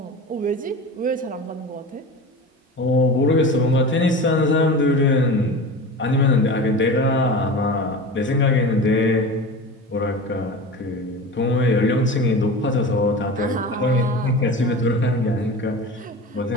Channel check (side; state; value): both; normal; correlation 0.31